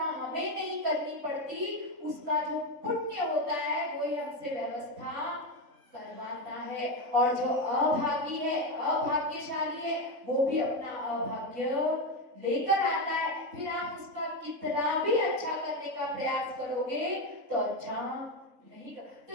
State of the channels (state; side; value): late; left; 3.7 ms